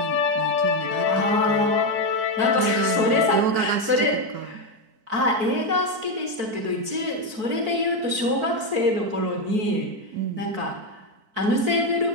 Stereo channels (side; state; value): left; late; 4.5 ms